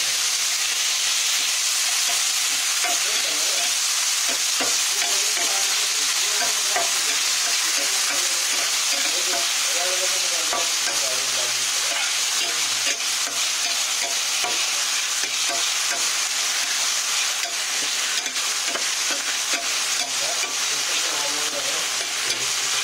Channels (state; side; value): identical; both; correlation 1.00